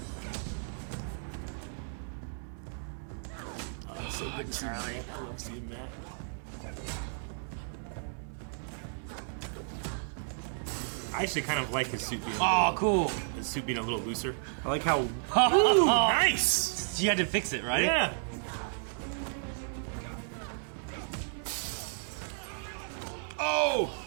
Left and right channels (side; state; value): left; silent; digital silence